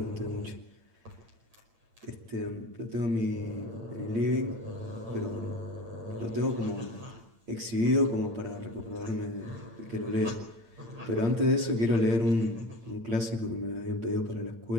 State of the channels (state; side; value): late; left; 8.9 ms